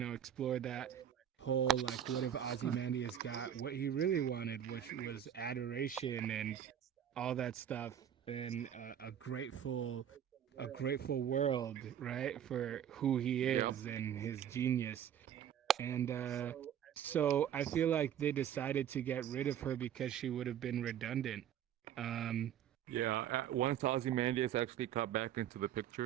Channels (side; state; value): left; quieter; 9.8 dB